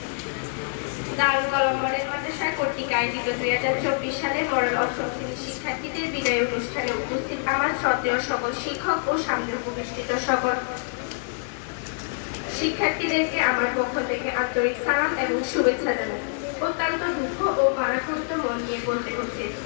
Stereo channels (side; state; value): right; silent; digital silence